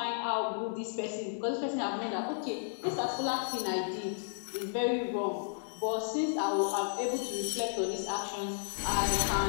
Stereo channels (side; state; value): right; silent; digital silence